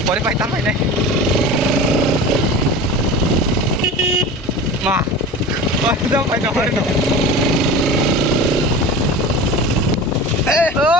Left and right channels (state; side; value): normal; both; correlation 0.34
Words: boleh pakai tambah ini. Mah, udah pakai tambah itu.